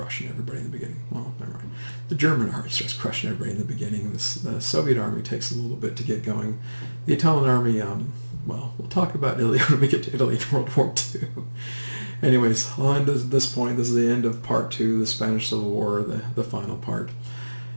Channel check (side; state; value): both; inverted; correlation -1.00